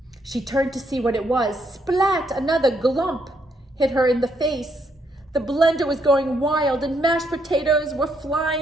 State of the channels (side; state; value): both; normal; correlation 0.75